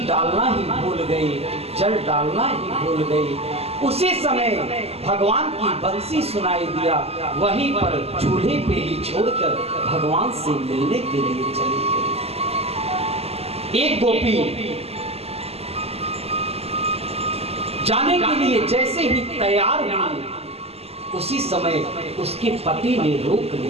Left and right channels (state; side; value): late; left; 0.29 ms